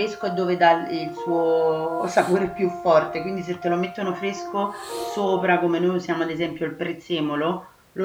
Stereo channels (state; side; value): identical; both; correlation 1.00